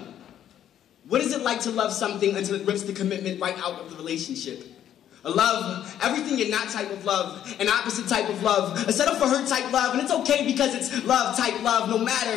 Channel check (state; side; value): quieter; right; 10.6 dB